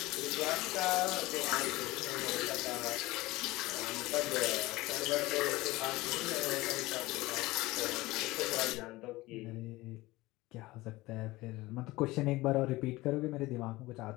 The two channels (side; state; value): right; quieter; 19.8 dB